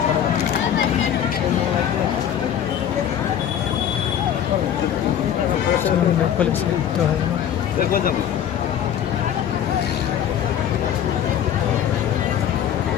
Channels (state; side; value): quieter; right; 9.7 dB